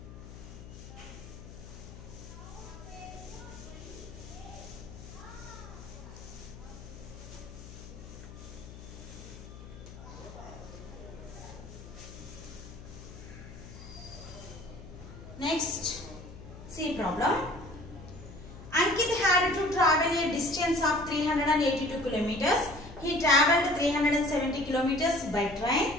Next, C problem. Ankit had to travel a distance of 382 kilometers. He traveled 370 kilometers by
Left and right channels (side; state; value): left; noise; hum, 15 dB below the sound